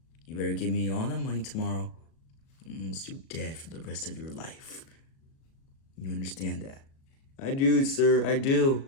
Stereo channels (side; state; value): right; late; 37 ms